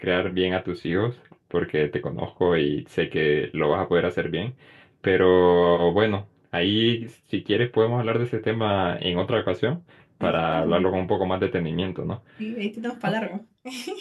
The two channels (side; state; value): both; identical; correlation 1.00